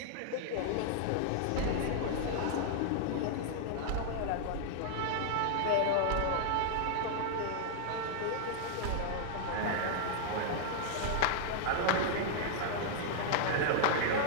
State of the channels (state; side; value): different; both; correlation -0.01